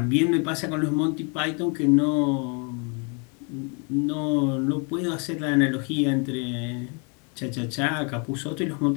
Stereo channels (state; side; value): quieter; right; 35.7 dB